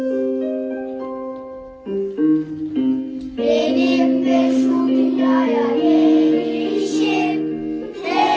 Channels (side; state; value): both; identical; correlation 1.00